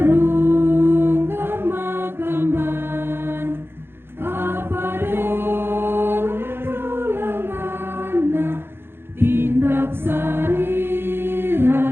kamakamban apa tindak sari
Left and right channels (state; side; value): late; left; 0.11 ms